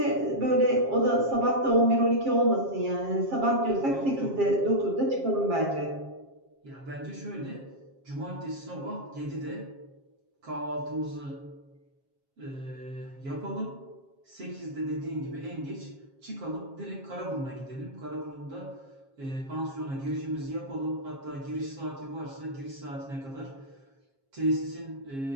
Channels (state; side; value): late; left; 7.4 ms